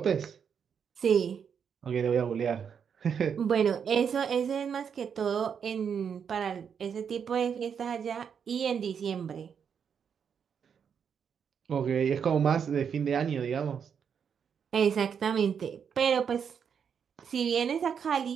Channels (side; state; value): left; quieter; 7.2 dB